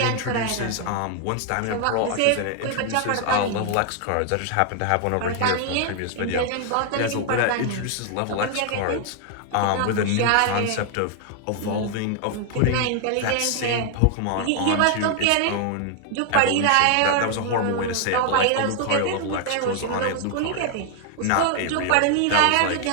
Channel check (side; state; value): both; different; correlation 0.00